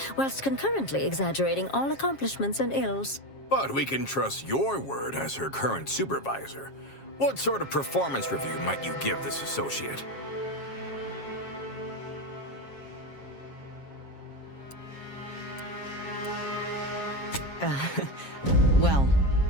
whilst concurrently exaggerating all accomplishments and ills. But we can trust your word as her current supervisor. What sort of performance review might you give this associate? Well,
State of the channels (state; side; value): late; right; 7.4 ms